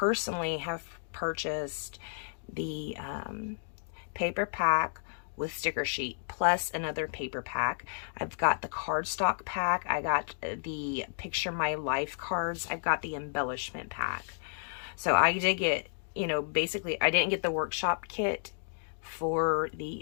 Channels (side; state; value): right; silent; digital silence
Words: have purchased the paper pack with sticker sheet plus another paper pack. I've got the cardstock pack. I got the Picture My Life cards. I've got the embellishment pack. So I did get, you know, basically I didn't get the workshop kit for